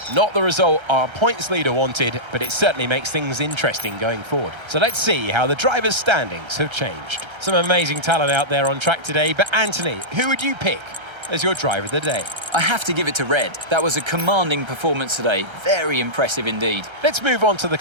Not the result our points leader wanted, but it certainly makes things interesting going forward. So let's see how the drivers' standings have changed. Some amazing talent out there on track today, but Anthony, who would you pick as your driver of the day? I have to give it to Red. That was a commanding performance today. Very impressive indeed. Let's move on to the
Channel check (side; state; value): left; late; 1.3 ms